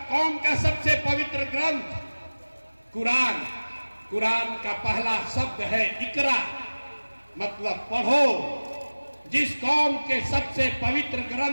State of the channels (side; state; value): both; inverted; correlation -1.00